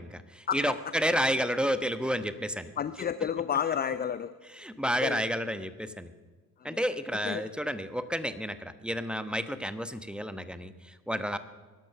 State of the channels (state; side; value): normal; both; correlation 0.62